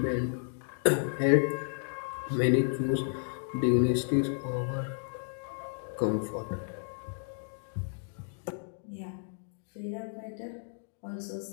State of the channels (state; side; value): silent; right; digital silence